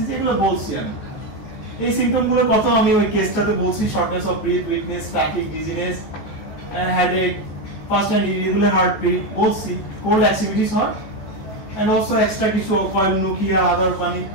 এগুলো বলছি আমি। এই সিম্পটমগুলোর কথা আমি ওই কেসটাতে বলছি, shortness of breath, weakness, fatigue, dizziness, headache, fast and irregular heartbeat বলছি, কোল্ড অ্যাক্টিভিটিস হয়, এন্ড অলসো এক্সট্রা কিছু কয়েলোনুকিয়া আদার মানে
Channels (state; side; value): late; right; 15 ms